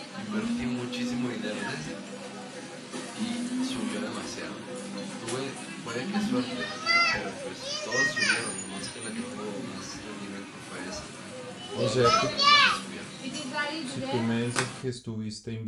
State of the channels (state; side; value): identical; both; correlation 1.00